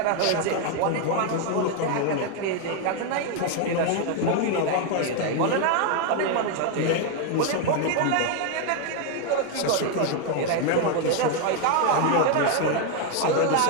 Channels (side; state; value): both; different; correlation 0.01